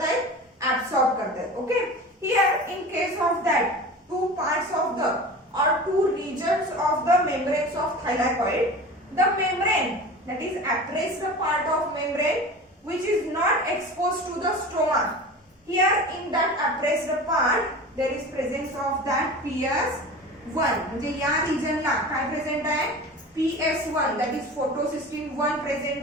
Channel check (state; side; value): normal; both; correlation 0.34